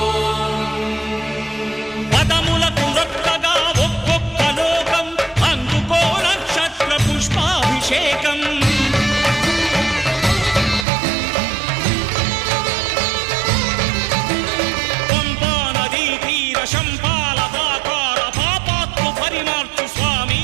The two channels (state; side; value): drops out; left; at 10.9 s